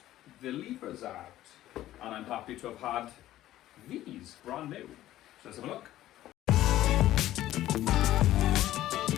the levers out. And I'm happy to have had these brand new. So let's have a look.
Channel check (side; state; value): right; quieter; 14.1 dB